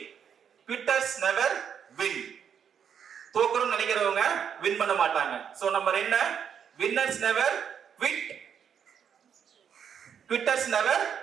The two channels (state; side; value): quieter; left; 7.9 dB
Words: குவிட்டர்ஸ் நெவர் வின், தோக்கணும் நினைக்கிறவங்க வின் பண்ண மாட்டாங்க. சோ நம்பர் என்ன, winners never quit, quitters never